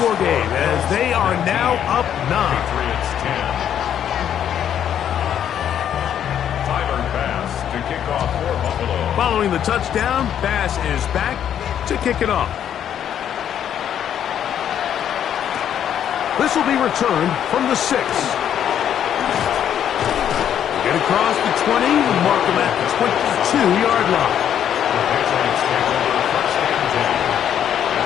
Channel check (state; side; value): quieter; right; 9.6 dB